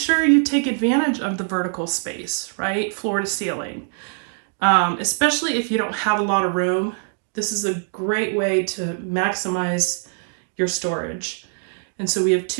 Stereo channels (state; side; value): silent; left; 59 dB below the other